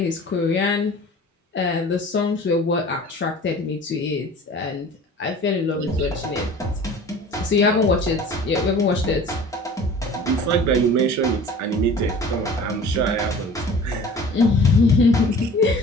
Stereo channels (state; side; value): normal; both; correlation 0.43